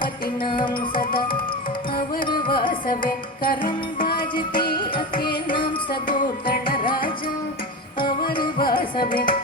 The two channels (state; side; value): normal; both; correlation 0.23